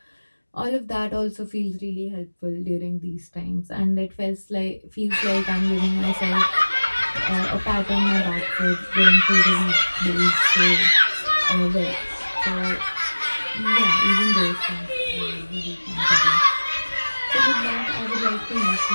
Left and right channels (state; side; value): inverted; both; correlation -1.00